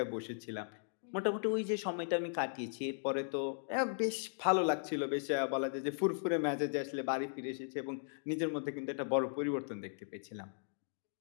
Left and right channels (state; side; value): silent; right; digital silence